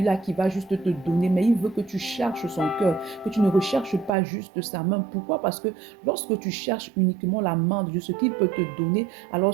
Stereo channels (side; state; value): left; drops out; at 4.1 s